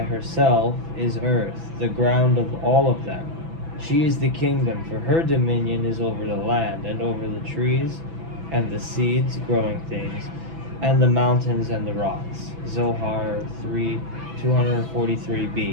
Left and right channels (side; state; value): left; late; 6.0 ms